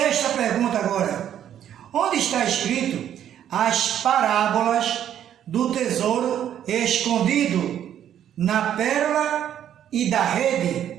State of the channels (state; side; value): quieter; left; 10.3 dB